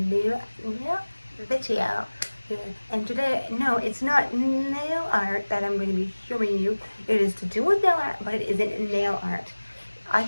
video. And today, no, it's not nail art that I'm going to be showing you. It is to do with nail art, but it isn't nail art. I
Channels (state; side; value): inverted; both; correlation -1.00